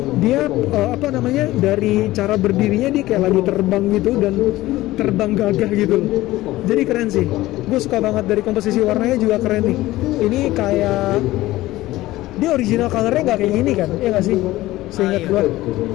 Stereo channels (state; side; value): quieter; right; 17.1 dB